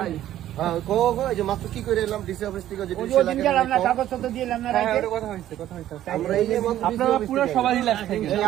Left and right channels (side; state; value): left; quieter; 12.6 dB